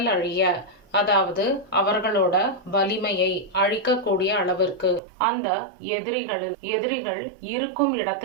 அழிய, அதாவது அவர்களோட வலிமையை அழிக்கக்கூடிய அளவிற்கு அந்த எதிரிகள் இருக்கும்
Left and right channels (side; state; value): left; drops out; at 5.0 s